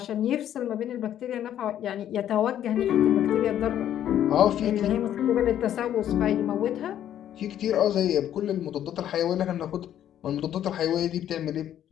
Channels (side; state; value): right; quieter; 10.9 dB